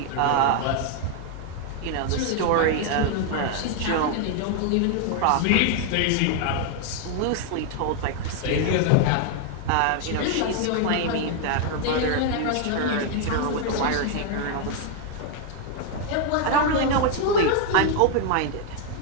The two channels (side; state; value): both; different; correlation 0.00